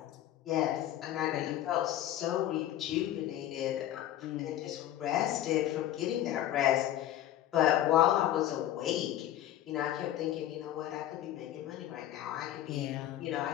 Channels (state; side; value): quieter; right; 12.7 dB